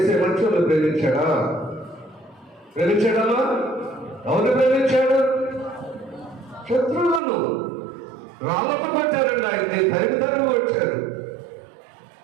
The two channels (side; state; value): left; drops out; at 7.2 s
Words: మనుషులు ప్రేమించాడా? ప్రేమించాడమ్మా? ఎవరిని ప్రేమించాడు? శత్రువులను. రాళ్ళతో కొట్టారండి ఆయన్ని, తరిమి వచ్చారు.